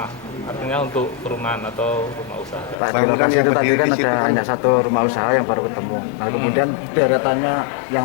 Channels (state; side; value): drops out; right; at 2.8 s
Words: Artinya untuk perumahan atau rumah usaha. Pak, di lokasi itu tadi kan ada hanya satu rumah usaha yang baru ketemu. Nah, kemudian deretannya yang